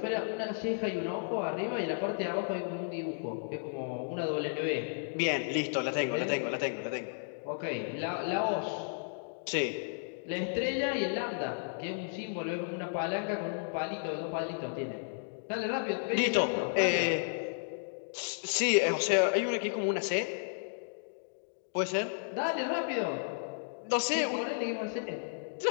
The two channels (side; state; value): right; silent; digital silence